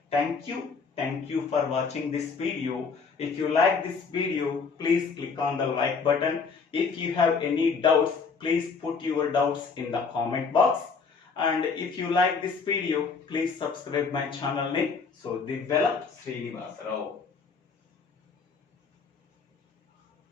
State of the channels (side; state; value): right; quieter; 5.1 dB